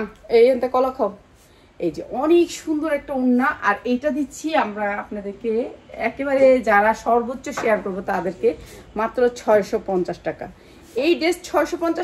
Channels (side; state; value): both; identical; correlation 1.00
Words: এইখান থেকে কলা খাও। এই যে অনেক সুন্দর একটা ওড়না, আর এইটা দিচ্ছি আমরা আপনাদেরকে একেবারে যারা সর্বোচ্চ শেয়ার করবো তাদেরকে মাত্র 650 টাকা। এই ড্রেস